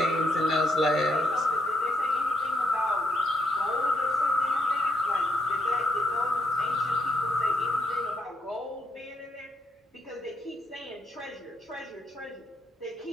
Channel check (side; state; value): both; normal; correlation 0.76